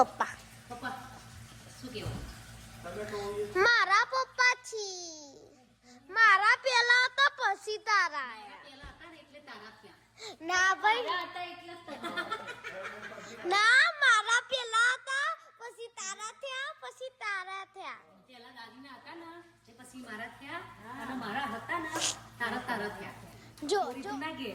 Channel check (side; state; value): both; identical; correlation 1.00